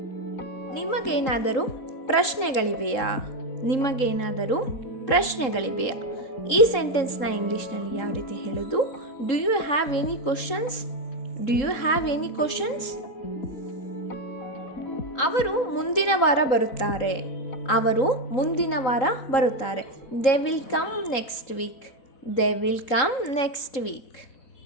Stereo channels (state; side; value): late; right; 3.8 ms